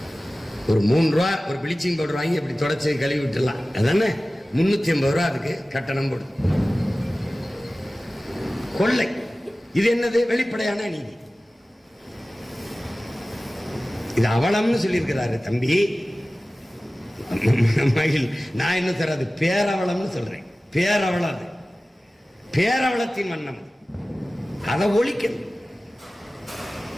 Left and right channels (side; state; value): both; normal; correlation 0.97